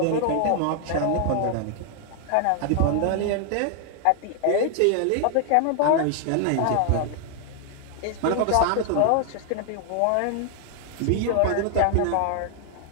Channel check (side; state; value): both; different; correlation 0.00